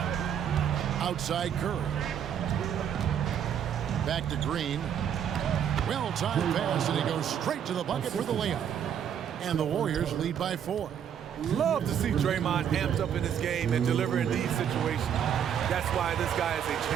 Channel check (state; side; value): quieter; left; 8.8 dB